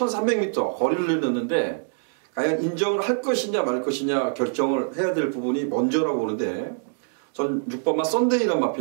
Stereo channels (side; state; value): left; silent; digital silence